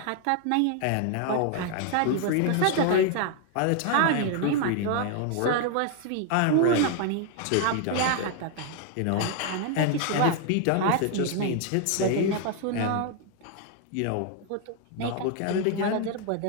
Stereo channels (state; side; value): different; both; correlation 0.00